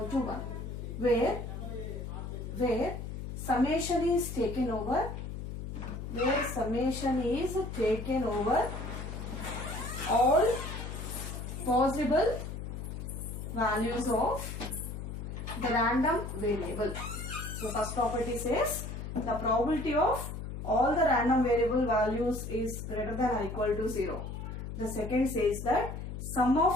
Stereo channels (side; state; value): left; noise; hum, 7 dB below the sound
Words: to 1, where summation is taken over, all possible values of the random variable. So first property says the probability of all the random variable values is greater than or equal to 0. The second says that sum